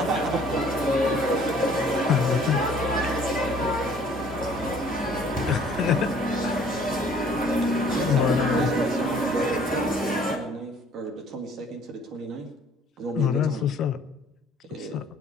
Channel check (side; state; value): both; normal; correlation 0.56